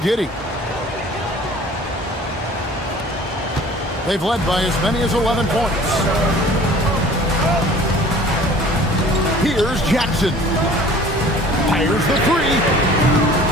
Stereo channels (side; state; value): both; normal; correlation 0.48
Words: They've led by as many as 11 points. Here's Jackson. Fires the 3.